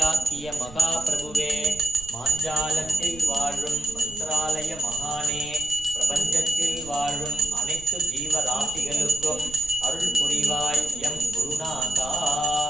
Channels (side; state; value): right; noise; rumble, 18 dB below the sound